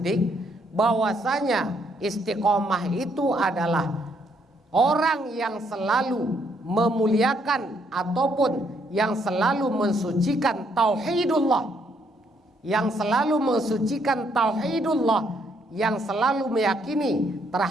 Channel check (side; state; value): both; normal; correlation 0.71